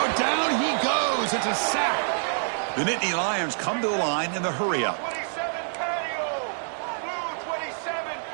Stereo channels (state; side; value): silent; left; 61 dB below the other